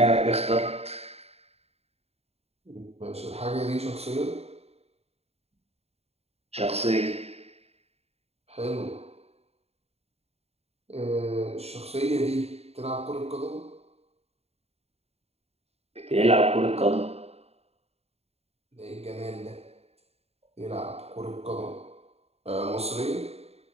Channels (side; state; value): left; late; 0.30 ms